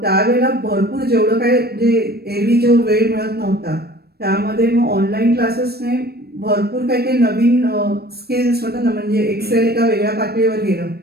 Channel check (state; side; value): late; left; 0.46 ms